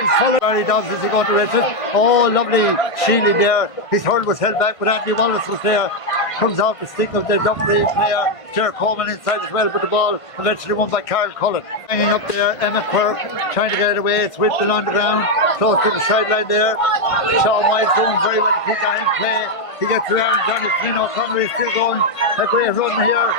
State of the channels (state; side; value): late; right; 1.5 ms